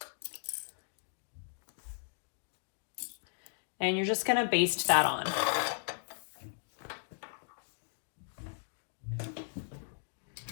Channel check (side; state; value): right; silent; digital silence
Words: And you're just going to baste that on.